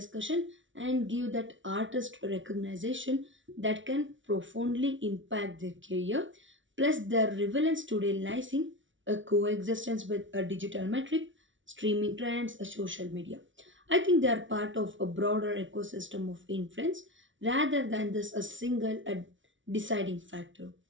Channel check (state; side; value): late; left; 0.56 ms